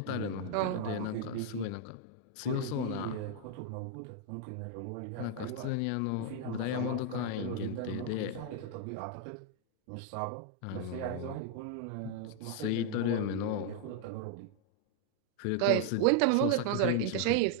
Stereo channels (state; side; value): different; both; correlation 0.00